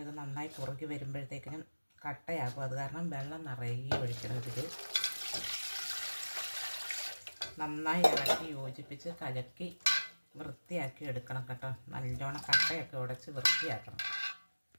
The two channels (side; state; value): both; inverted; correlation -1.00